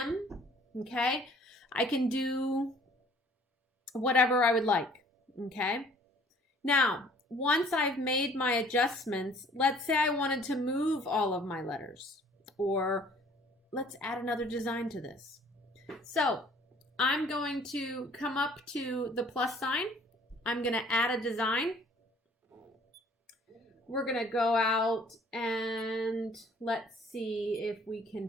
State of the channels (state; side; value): normal; both; correlation 0.56